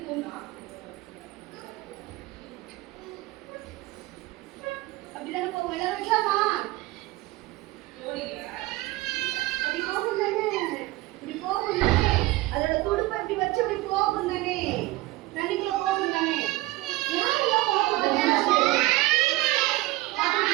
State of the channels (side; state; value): left; quieter; 19.4 dB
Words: அப்படிதானே போகும். எல்லாரும் வைக்கலாமா? அப்படி போகும் தானே, இப்படி போகும் தானே, அதோட துடுப்பை இப்படி வச்சு இப்படி போகும் தானே, தண்ணிக்குள்ள போகும் தானே. யாரெல்லாம் போகும் தானே?